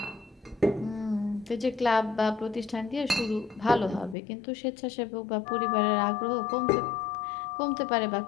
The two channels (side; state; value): right; drops out; at 4.2 s